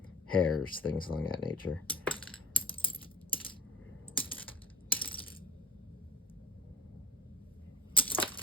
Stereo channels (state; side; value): normal; both; correlation 0.45